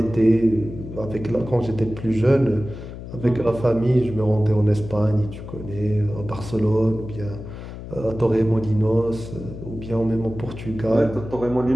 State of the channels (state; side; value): noise; left; hum, 11 dB below the sound